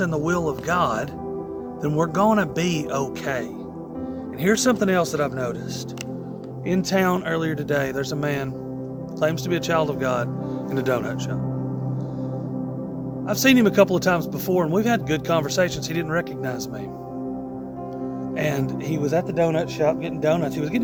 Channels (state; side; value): identical; both; correlation 1.00